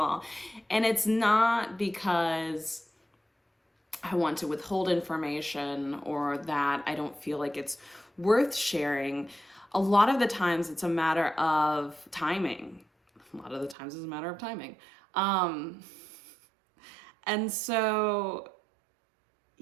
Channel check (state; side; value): drops out; left; at 13.8 s